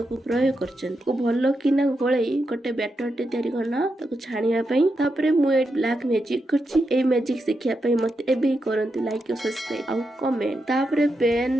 प्रयोग करछंदी। को भलो किना गोळई गोटे बैटर टे तयारी करना ताको छानिया पई। तापर मु ए ब्लैक मैजिक करछि। ए मैजिक सिखिया पई मते एबे करंती लाइक और सब्सक्राइब आ कमेंट। तापर पैन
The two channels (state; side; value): normal; both; correlation 0.86